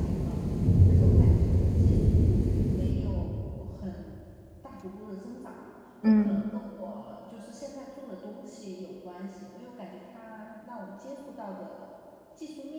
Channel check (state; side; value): identical; both; correlation 1.00